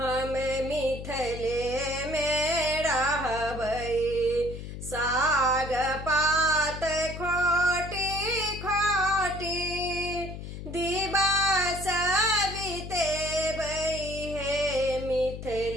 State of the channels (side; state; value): left; noise; hum, 9 dB below the sound